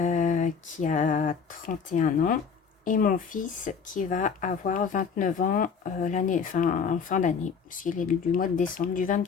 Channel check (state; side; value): quieter; right; 6.1 dB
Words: qui a 31 ans. Et mon fils qui va avoir 29 ans en fin d'année, puisqu'il est du mois de décembre, du